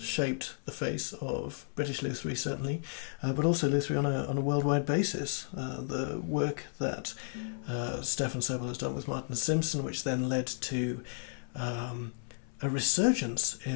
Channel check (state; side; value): silent; right; 56 dB below the other